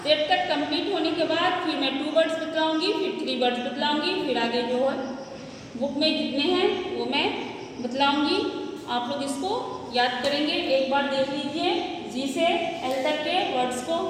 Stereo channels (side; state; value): both; identical; correlation 1.00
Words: जेड तक कंप्लीट होने के बाद फिर मैं 2 वर्ड्स बतलाऊंगी, फिर 3 वर्ड्स बतलाऊंगी, फिर आगे जो है बुक में जितने हैं वो मैं बतलाऊंगी। आप लोग इसको याद करेंगे। एक बार देख लीजिए जी से एल तक के वर्ड्स को।